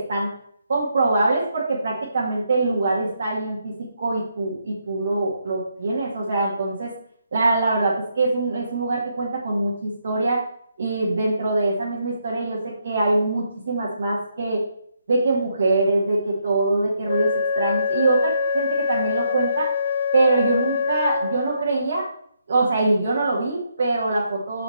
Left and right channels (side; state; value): both; inverted; correlation -0.77